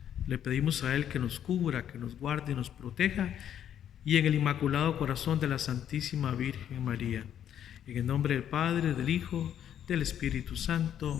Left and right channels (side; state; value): right; quieter; 9.9 dB